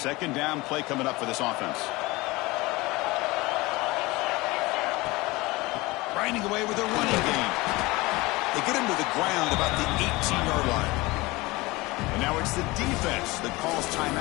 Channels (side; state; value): right; quieter; 22.0 dB